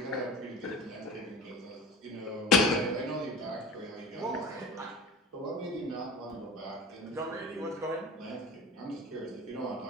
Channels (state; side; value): normal; both; correlation 0.36